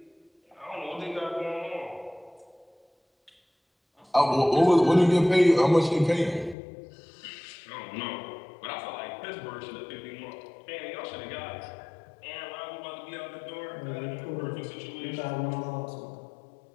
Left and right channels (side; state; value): right; drops out; at 6.6 s